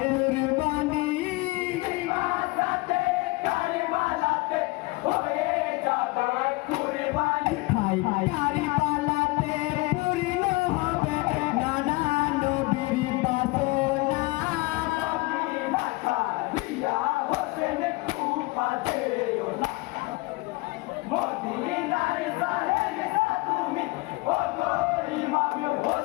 মাসাতে কারবালাতে হয়ে যাবে কুরবানি হাই কারিবালাতে পূর্ণ হবে নানা নবীর বাসনা মদিনা ছাড়িয়া হোসেন কুফা যেও না মদিনার সাহেব তুমি ওগো ইমাম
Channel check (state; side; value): quieter; right; 23.1 dB